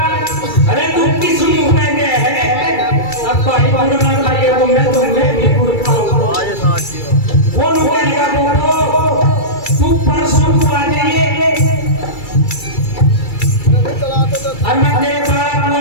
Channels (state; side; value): late; right; 2.3 ms